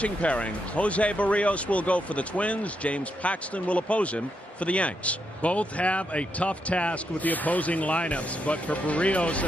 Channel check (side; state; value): both; normal; correlation 0.81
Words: pairing, Jose Barrios will go for the Twins. James Paxton will oppose him for the Yanks. Both have a tough task with the opposing lineups, but for Barrios